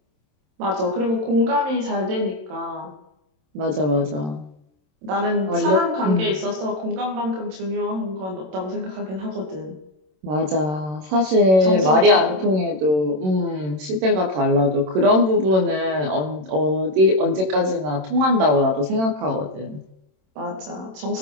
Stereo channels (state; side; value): late; left; 27 ms